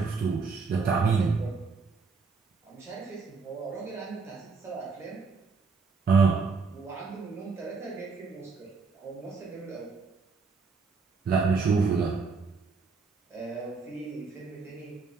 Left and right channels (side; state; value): left; quieter; 4.7 dB